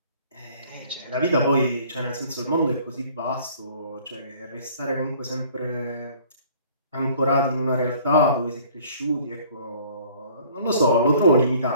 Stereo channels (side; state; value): both; inverted; correlation -0.53